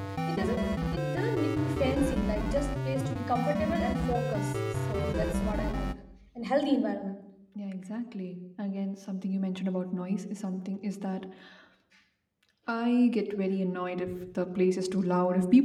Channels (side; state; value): both; identical; correlation 1.00